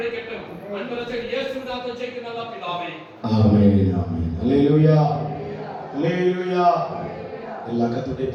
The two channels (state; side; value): identical; both; correlation 1.00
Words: அன்பரசே இயேசுவின் நாமத்தில் ஜெபிக்கிறேன் நல்ல பிதாவே. ஆமென் ஆமென். ஹல்லேலூயா ஹல்லேலூயா. எல்லா கர்த்தருடைய